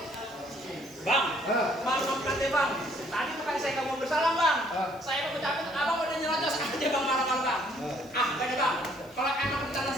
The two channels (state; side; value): noise; left; hiss, 27 dB below the sound